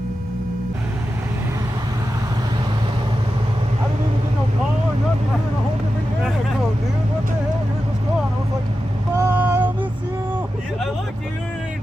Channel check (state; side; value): normal; both; correlation 0.91